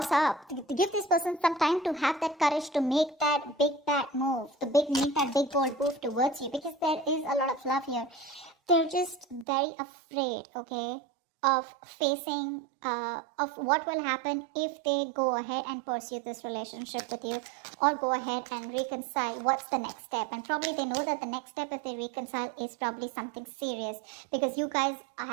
up. To give this person some time to have that courage to make that big bad move. Make that big bold move towards you. Because there is a lot of love here. They're just very afraid, okay, of facing, of what will happen if they go ahead and pursue this relationship with you. Or go ahead and reconcile. What's the next step? And probably they know that the next step if they reconcile is probably something serious. Because you guys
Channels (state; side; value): drops out; left; at 9.5 s